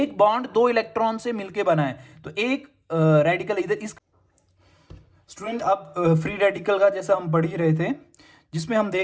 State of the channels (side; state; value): both; identical; correlation 1.00